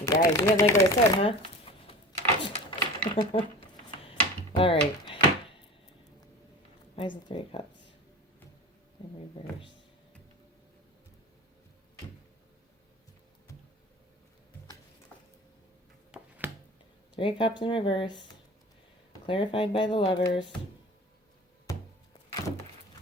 You guys, you didn't like what I said, huh? All right. Why is the Three of Cups in reverse? Three of Cups in reverse. Clarified by the Lovers.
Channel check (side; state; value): both; normal; correlation 0.36